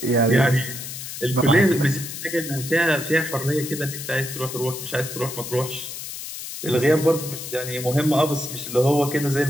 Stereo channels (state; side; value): noise; left; hiss, 9 dB below the sound